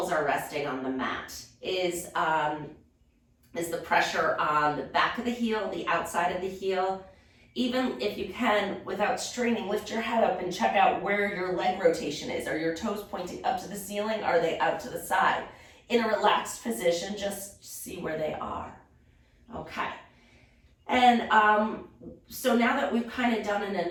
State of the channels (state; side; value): identical; both; correlation 1.00